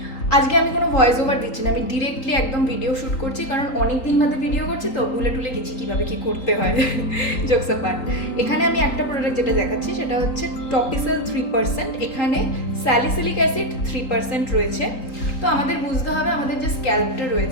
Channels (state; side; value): late; right; 3.9 ms